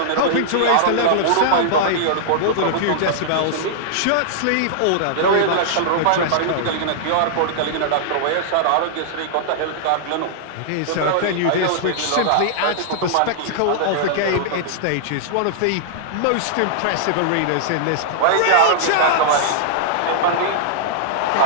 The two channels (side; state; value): both; different; correlation -0.01